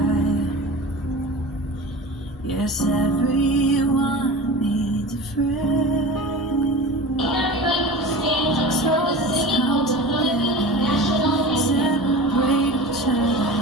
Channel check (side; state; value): both; normal; correlation 0.34